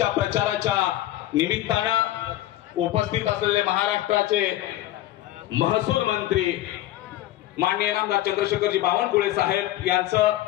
प्रचाराच्या निमित्तानं उपस्थित असलेले महाराष्ट्राचे महसूल मंत्री माननीय नामदार चंद्रशेखरजी बावनकुळे साहेब यांचं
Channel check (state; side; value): quieter; right; 14.8 dB